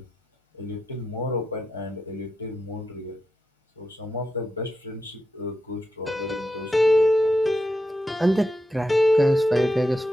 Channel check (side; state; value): both; normal; correlation 0.86